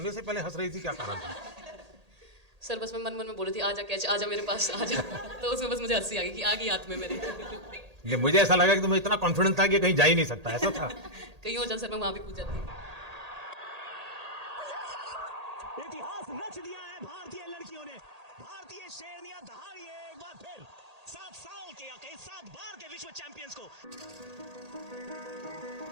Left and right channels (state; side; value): late; left; 1.8 ms